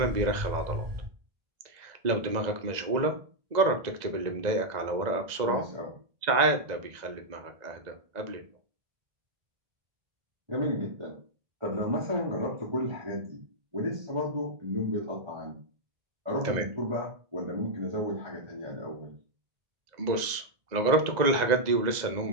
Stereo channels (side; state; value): left; late; 2.0 ms